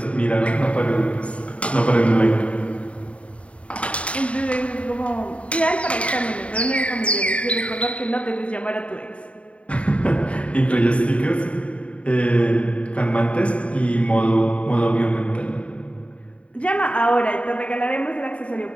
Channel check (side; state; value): right; late; 0.063 ms